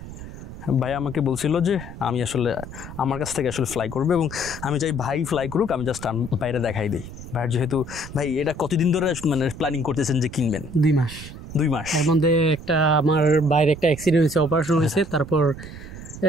ভাই আমাকে বলছিল যে আমি আসলে আমার কাছ থেকে আসলে ফ্লাই করবে, এবং আমি চাই ভাই ফ্লাই করুক, আমি জাস্ট বাইরে দেখাই দিই। ভাইয়ের যেহেতু ভাই এটা কতদিন ধরে মানে প্ল্যানিং করতেছেন যে কিনবেন? 2 মাস। এর মধ্যে একটা আমার বাইরে একটা অ্যাক্সিডেন্ট হয়েছে, অপারেশন হয়েছে, তারপর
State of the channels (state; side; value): noise; right; rumble, 12 dB below the sound